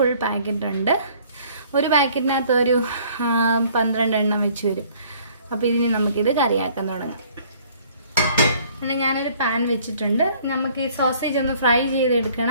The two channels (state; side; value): inverted; both; correlation -0.57